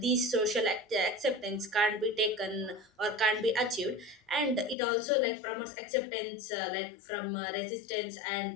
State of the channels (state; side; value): drops out; right; at 4.8 s